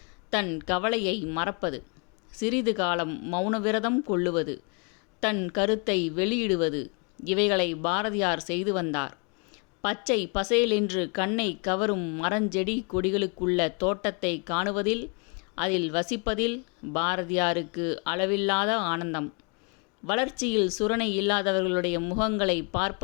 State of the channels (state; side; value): quieter; right; 35.2 dB